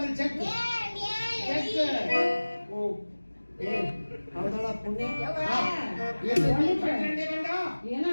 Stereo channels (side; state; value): both; inverted; correlation -1.00